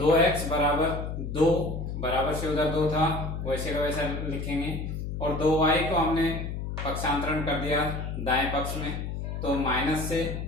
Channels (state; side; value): noise; left; hum, 5 dB below the sound